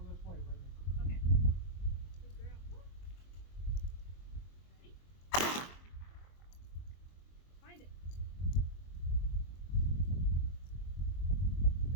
this way, Brittany. Okay. Good girl. Ready? Find it.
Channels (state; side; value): late; right; 23 ms